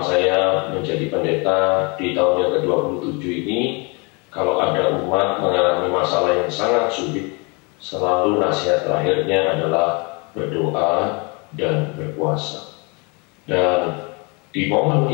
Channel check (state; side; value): quieter; right; 31.0 dB